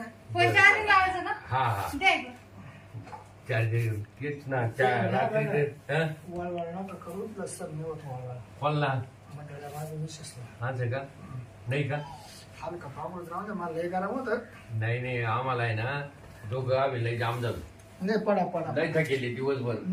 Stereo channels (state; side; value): identical; both; correlation 1.00